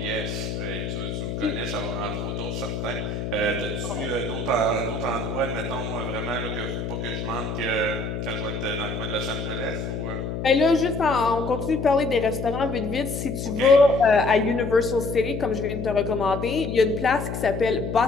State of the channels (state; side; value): noise; left; hum, 4 dB below the sound